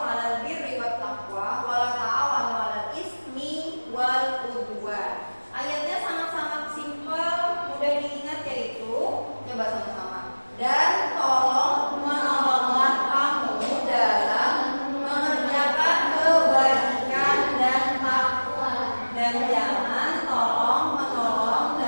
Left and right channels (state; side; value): inverted; both; correlation -1.00